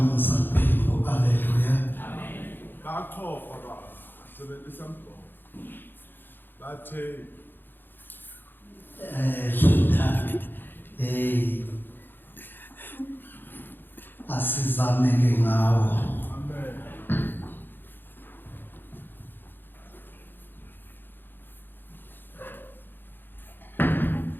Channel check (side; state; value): right; late; 0.096 ms